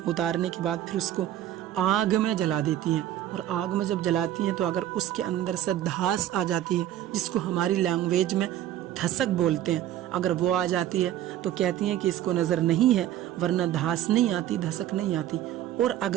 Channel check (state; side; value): quieter; left; 12.4 dB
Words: उतारने के बाद फिर उसको आग में जला देती हैं, और आग में जब जलाती हैं तो अगर उसके अंदर से धास आ जाती है, जिसको हमारी लैंग्वेज में धसक बोलते हैं, अगर वो आ जाती है तो कहती हैं कि इसको नज़र नहीं है, वरना धास नहीं आती, धसक नहीं आती। और